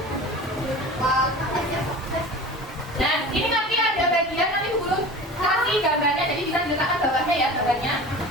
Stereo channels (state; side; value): normal; both; correlation 0.36